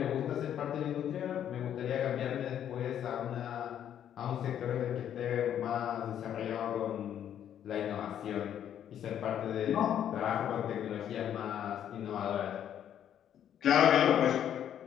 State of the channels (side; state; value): right; quieter; 10.0 dB